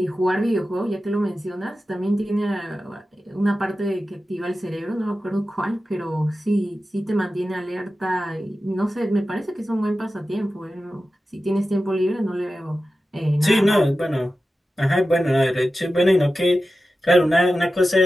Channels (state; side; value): normal; both; correlation 0.93